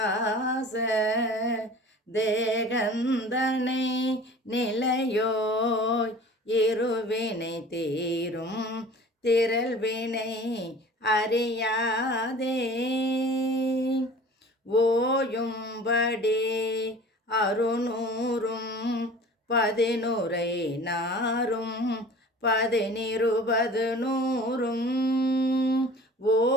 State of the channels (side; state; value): both; normal; correlation 0.44